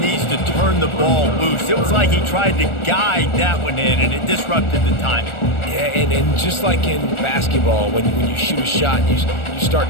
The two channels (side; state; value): right; late; 1.4 ms